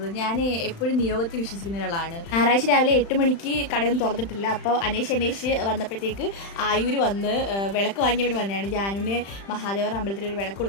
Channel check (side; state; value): right; late; 35 ms